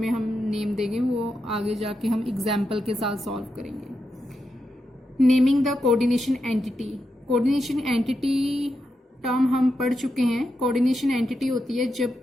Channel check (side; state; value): both; normal; correlation 0.86